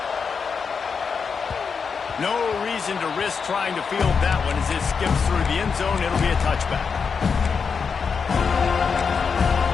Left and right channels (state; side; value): quieter; right; 5.8 dB